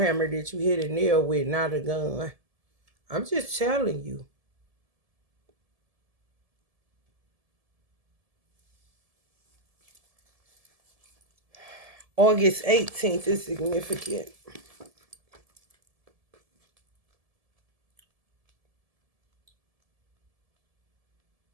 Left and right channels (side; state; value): left; late; 1.7 ms